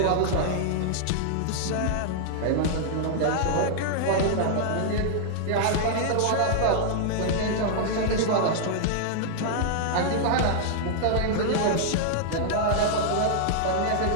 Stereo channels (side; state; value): both; different; correlation -0.01